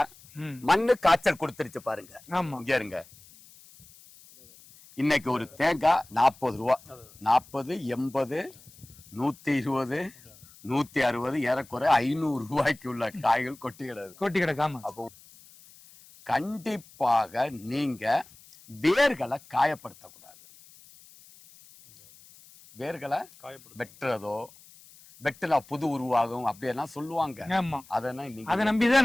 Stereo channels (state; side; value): noise; left; hiss, 24 dB below the sound